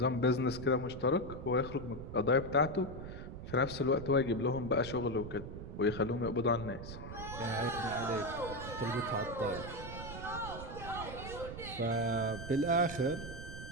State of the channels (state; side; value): noise; right; rumble, 10 dB below the sound